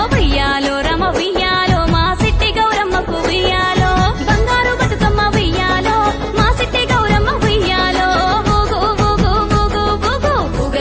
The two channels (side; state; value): both; identical; correlation 1.00